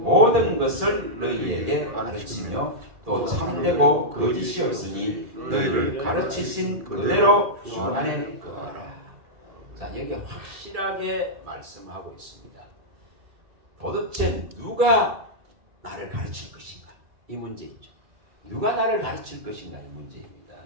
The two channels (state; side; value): late; left; 1.8 ms